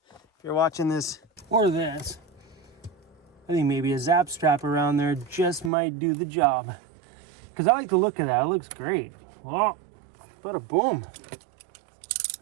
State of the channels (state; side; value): drops out; left; at 5.7 s